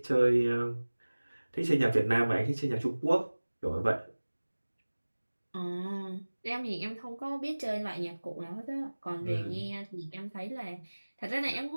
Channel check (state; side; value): inverted; both; correlation -1.00